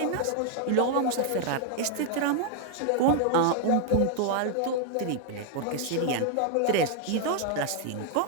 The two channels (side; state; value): both; different; correlation 0.00